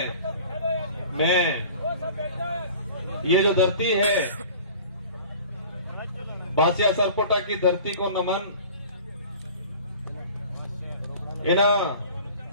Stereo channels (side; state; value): both; inverted; correlation -0.43